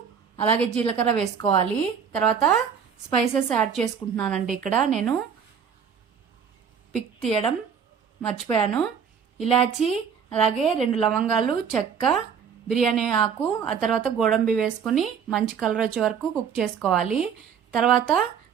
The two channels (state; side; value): quieter; left; 7.2 dB